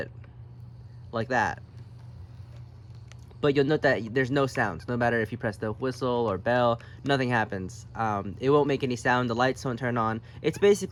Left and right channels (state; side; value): identical; both; correlation 1.00